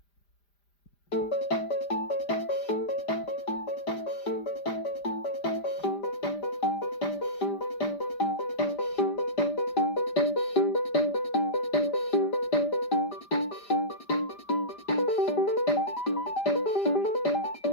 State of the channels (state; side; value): late; right; 5.0 ms